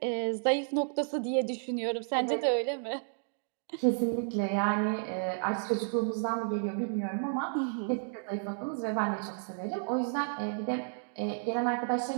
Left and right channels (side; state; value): left; silent; digital silence